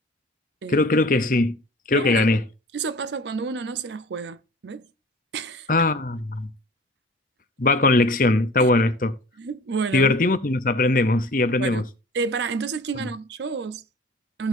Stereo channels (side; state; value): both; normal; correlation 0.43